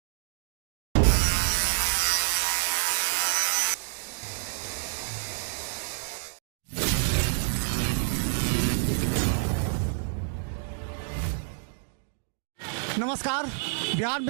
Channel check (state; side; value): silent; left; digital silence